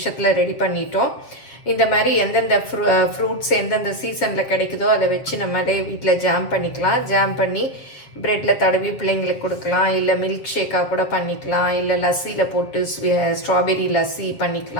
ரெடி பண்ணிட்டோம். இந்த மாதிரி எந்தெந்த ஃப்ரூட்ஸ் எந்தெந்த சீசனில் கிடைக்குதோ அதை வச்சு நம்மளே வீட்டில் ஜாம் பண்ணிக்கலாம். ஜாம் பண்ணி ப்ரெட்டில் தடவி பிள்ளைங்களுக்கு கொடுக்கலாம், இல்லை மில்க் ஷேக்காக கூட பண்ணிக்கலாம், இல்லை லஸ்ஸியில் போட்டு ஸ்ட்ராபெரி லஸ்ஸி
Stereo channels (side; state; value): right; late; 7.7 ms